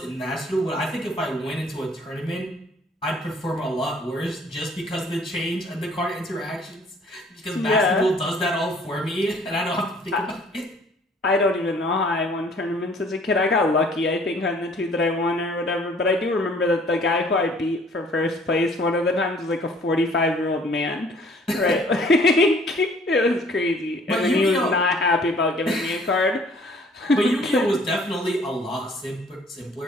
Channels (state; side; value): normal; both; correlation 0.56